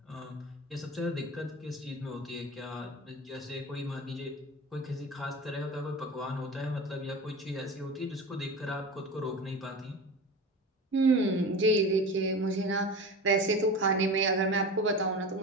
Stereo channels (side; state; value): both; normal; correlation 0.31